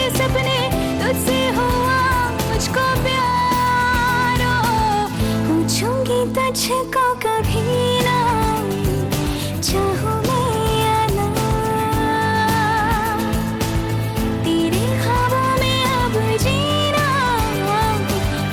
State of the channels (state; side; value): identical; both; correlation 1.00